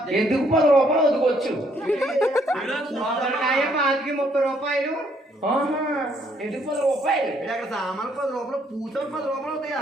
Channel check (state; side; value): normal; both; correlation 0.68